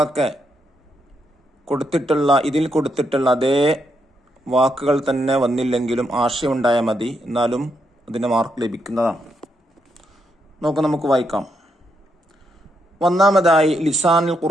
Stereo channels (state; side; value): normal; both; correlation 0.80